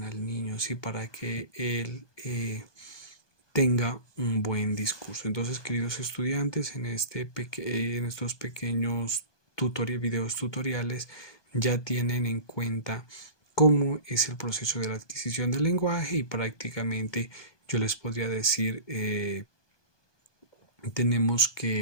al niño, ¿sí? Para que él tenga un buen discurso. Entonces, queridos estudiantes, en estos pequeños videos tutoriales ya tienen en cuenta cómo es el proceso de la adquisición del lenguaje y prácticamente yo les podría decir,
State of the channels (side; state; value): right; late; 1.2 ms